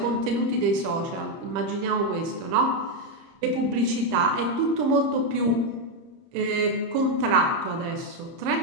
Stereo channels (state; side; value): late; left; 30 ms